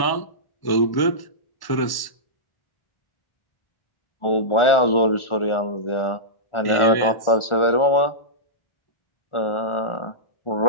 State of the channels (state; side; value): late; right; 1.1 ms